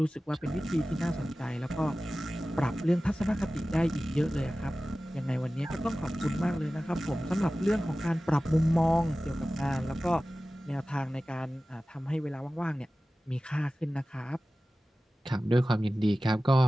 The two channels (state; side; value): normal; both; correlation 0.96